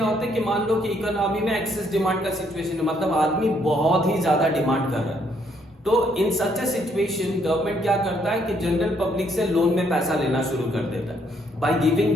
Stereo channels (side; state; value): both; normal; correlation 0.70